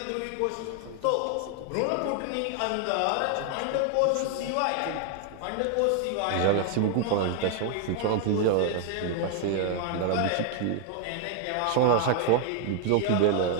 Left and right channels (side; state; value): both; different; correlation 0.00